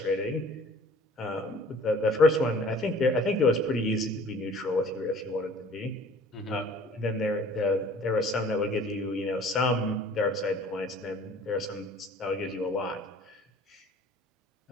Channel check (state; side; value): normal; both; correlation 0.50